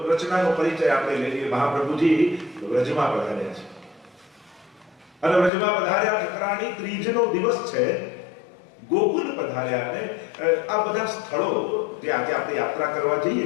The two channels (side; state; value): right; drops out; at 5.5 s